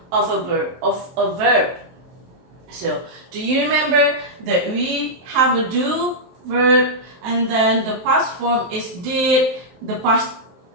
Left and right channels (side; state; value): left; late; 23 ms